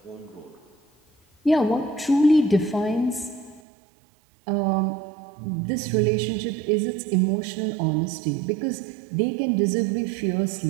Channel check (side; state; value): left; drops out; at 3.6 s